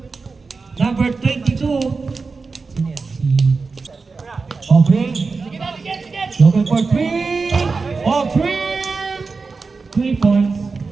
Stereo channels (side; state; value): left; quieter; 4.3 dB